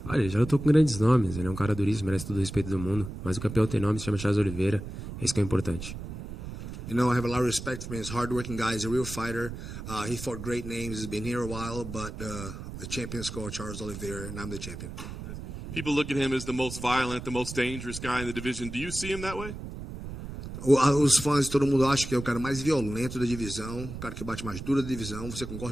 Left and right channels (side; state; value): right; noise; rumble, 9 dB below the sound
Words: Olha, ele já lutou com grandes nomes. Ele é um cara duríssimo, merece todo o respeito do mundo. Mas o campeão tem nome, se chama Charles Oliveira. Esse que é importante. You know, I have a lot of respect for him. He's a hard-working guy. He's a real fighter. He fought great names. He's been here a while, but the champion is called Charles Oliveira, and I'm the champion. People look at him as the most violent, the most dangerous guy in the division. Do you see him that way? Os fãs, todo mundo acha que é o cara mais violento da divisão, o cara que bate mais duro da divisão. Você